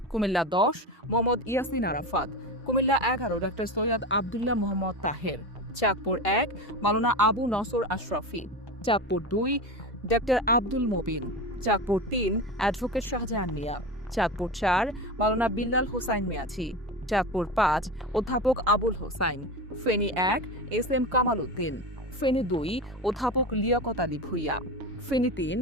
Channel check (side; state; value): both; normal; correlation 0.24